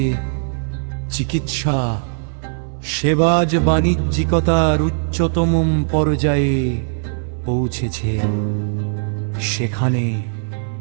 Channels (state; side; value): silent; left; 60 dB below the other